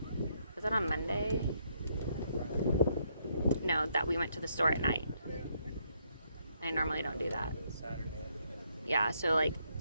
that on Monday? No, that we went to the store at night. I normally don't do that. Saturday. Yeah, so like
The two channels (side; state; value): both; inverted; correlation -0.73